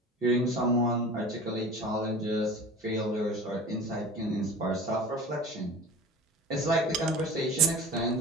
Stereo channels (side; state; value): both; normal; correlation 0.37